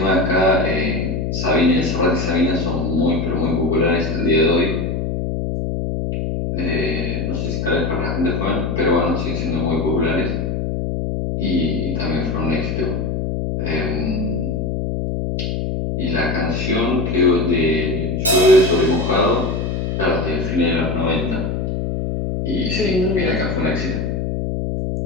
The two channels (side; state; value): left; noise; hum, 1 dB below the sound